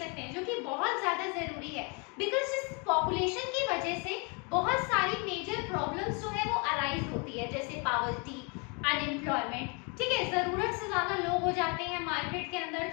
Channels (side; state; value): right; quieter; 33.3 dB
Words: हैं, जो कि बहुत ज्यादा जरूरी है। बिकॉज इस पॉपुलेशन की वजह से बहुत सारी मेजर प्रॉब्लम्स जो है वो अराइज होती है, जैसे पॉवर्टी, अनएम्प्लॉयमेंट। ठीक है, जरूरत से ज्यादा लोग हो जाते हैं मार्केट के अंदर,